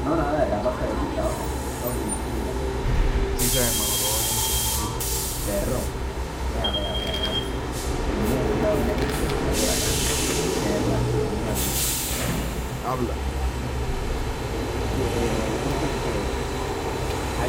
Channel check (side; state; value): both; identical; correlation 1.00